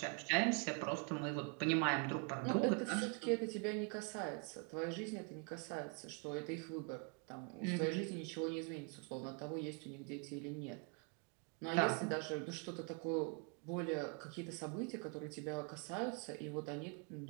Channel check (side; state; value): left; quieter; 35.8 dB